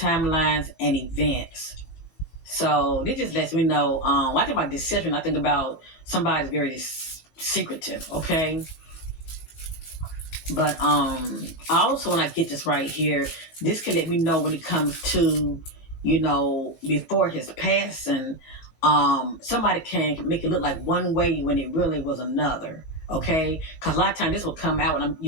and events. So this just lets me know, when I think about deception, I think about somebody's very secretive, okay? But also when I get this right here, this can let me know when it comes to, before his passing, somebody can make it look like one way when it really was another. Okay, because a lot of times this will come out when I'm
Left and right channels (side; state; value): right; late; 19 ms